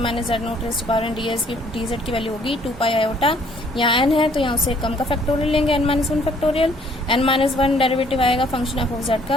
minus z naught raise to power n dz की वैल्यू होगी 2 पाई आयोटा. यहाँ n है तो यहाँ उससे कम का फैक्टोरियल लेंगे n minus 1 factorial, n minus 1 derivative आएगा फंक्शन f ऑफ z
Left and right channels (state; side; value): normal; both; correlation 0.62